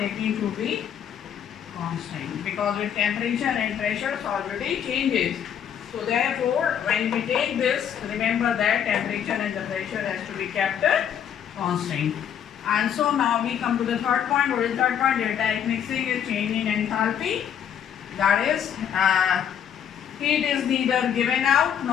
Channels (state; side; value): quieter; right; 8.9 dB